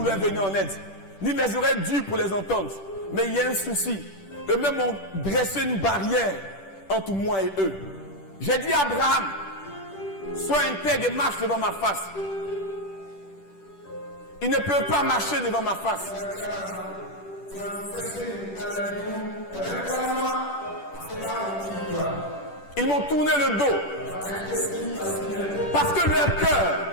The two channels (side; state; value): right; late; 10 ms